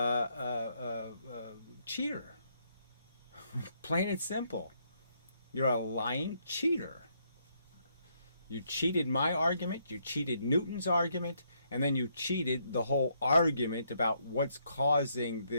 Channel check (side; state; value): both; inverted; correlation -0.74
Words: cheater. Plain and simple. You're a lying cheater. You cheated my argument, you cheated Newton's argument, and then you cheated the whole argument about what's causing